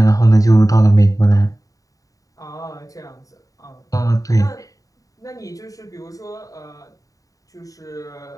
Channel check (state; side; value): late; right; 0.16 ms